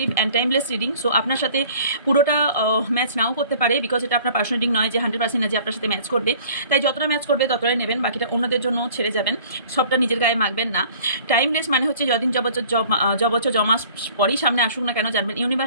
and timeless reading. So আপনার সাথে পুরোটা ম্যাচ নাও করতে পারে, বিকজ এটা আপনার পার্সোনাল রিডিং নয় যে 100% যে আপনার সাথে ম্যাচ করবে। তাই যতটা ম্যাচ করবে ততটাই নেবেন, বাকিটা অন্যদের জন্য ছেড়ে যাবেন, সবটা নিজের গায়ে মাখবেন না। টাইমলেস মানে হচ্ছে যদিন যবছর জমা পরেই সামনে আসুক না কেন, জানবেন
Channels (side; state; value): both; inverted; correlation -0.50